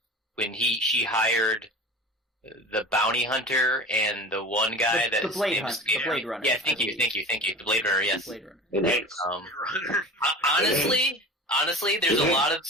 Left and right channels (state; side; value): normal; both; correlation 0.36